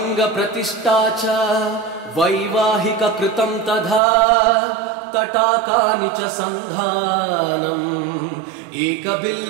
च वैवाहिककृतं तथा तटाकानि च सन्धानम्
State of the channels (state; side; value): drops out; left; at 4.0 s